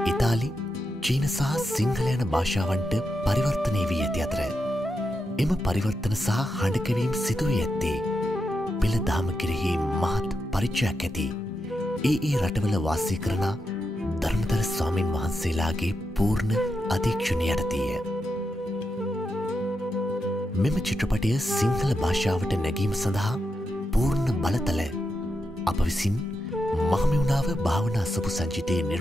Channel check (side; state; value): both; normal; correlation 0.86